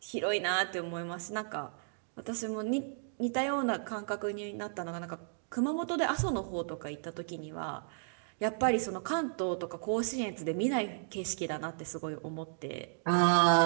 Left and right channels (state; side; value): silent; left; digital silence